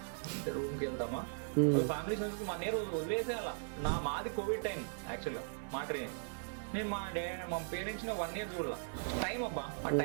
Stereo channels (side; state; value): left; silent; 52 dB below the other